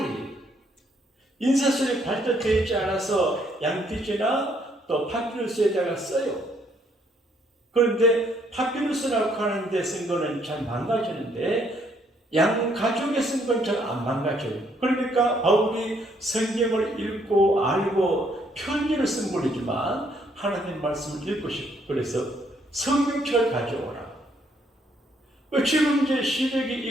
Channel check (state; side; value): normal; both; correlation 0.69